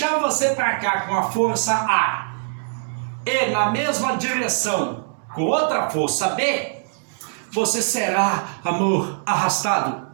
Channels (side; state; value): left; silent; digital silence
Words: você para cá com a força A e na mesma direção com outra força B, você será, amor, arrastado